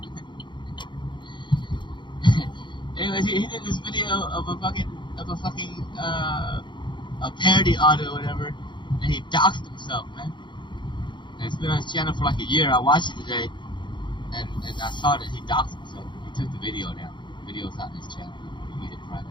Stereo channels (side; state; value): right; late; 0.23 ms